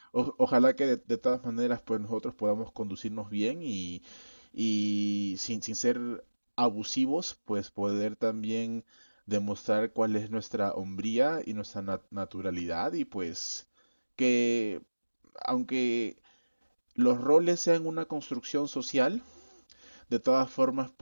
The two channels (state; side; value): inverted; both; correlation -1.00